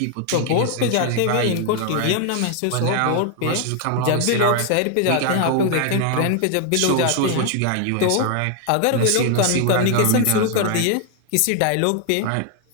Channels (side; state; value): both; different; correlation 0.00